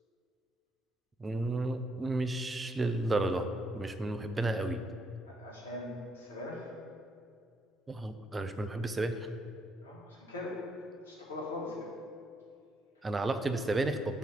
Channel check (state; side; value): normal; both; correlation 0.75